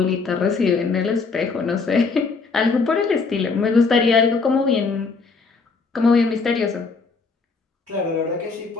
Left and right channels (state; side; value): quieter; right; 4.5 dB